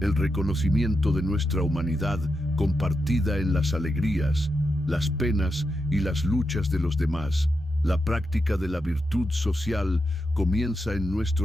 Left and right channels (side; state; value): both; normal; correlation 0.86